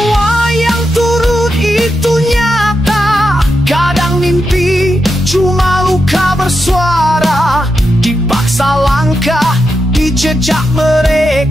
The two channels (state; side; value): normal; both; correlation 0.86